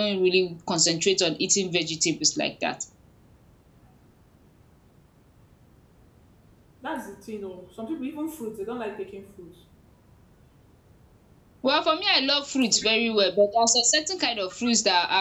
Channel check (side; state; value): both; identical; correlation 1.00